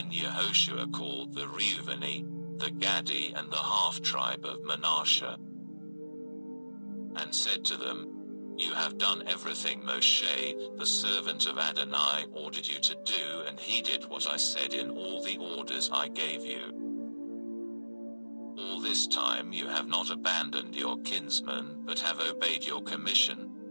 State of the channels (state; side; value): inverted; both; correlation -1.00